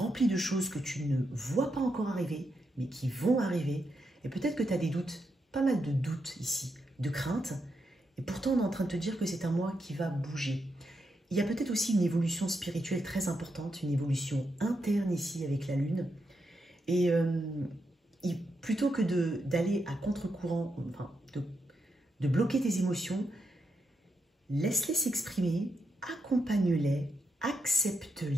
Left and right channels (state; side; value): normal; both; correlation 0.83